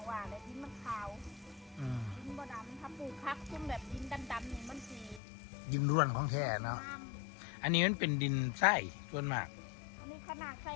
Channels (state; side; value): drops out; right; at 5.2 s